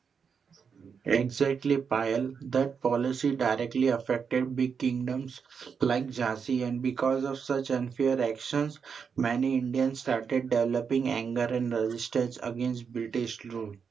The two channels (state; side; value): quieter; left; 6.3 dB